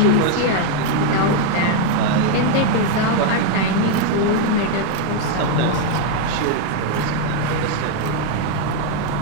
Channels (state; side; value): different; both; correlation 0.01